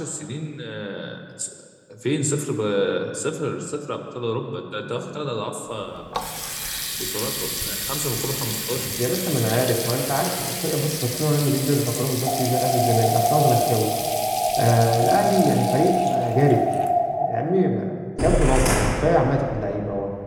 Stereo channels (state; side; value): identical; both; correlation 1.00